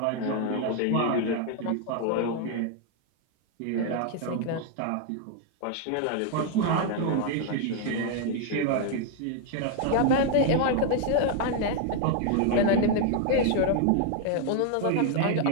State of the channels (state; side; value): different; both; correlation 0.00